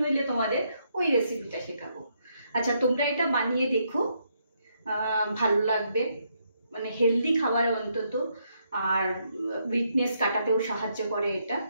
হইলে তোমাদের ওই রেসিপিটা শেখাবো। আচ্ছা, তোমরা এটা বানিয়ে দেখো, ভালো লাগবে, মানে হেলদি খাবার অন্তত, আর উইকনেস কাটাতেও সাহায্য করে এটা।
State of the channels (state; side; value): inverted; both; correlation -0.76